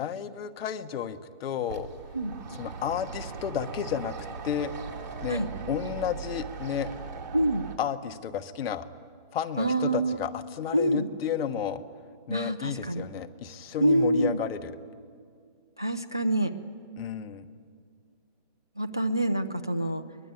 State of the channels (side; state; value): both; inverted; correlation -0.51